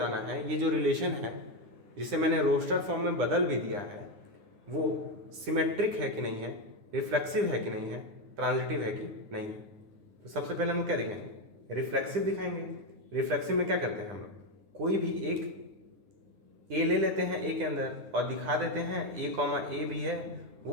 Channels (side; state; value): left; late; 10 ms